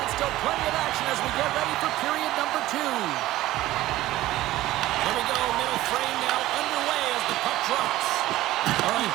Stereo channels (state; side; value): quieter; left; 16.0 dB